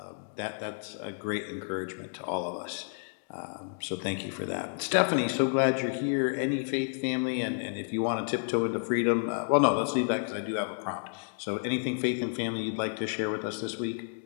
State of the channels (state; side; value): silent; right; digital silence